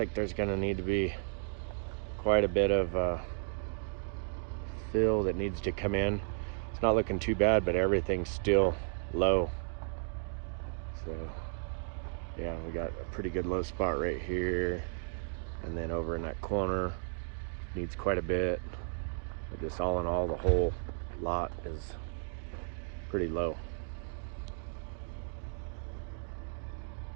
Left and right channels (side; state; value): left; silent; 55 dB below the other